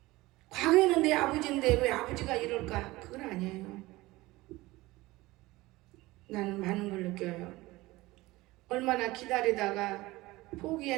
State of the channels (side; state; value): left; quieter; 19.8 dB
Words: 과거에는 내 아버지인데 왜 아버지가 이럴까? 그건 아니에요. 나는 많은 걸 느껴요. 얼마나 기다리다가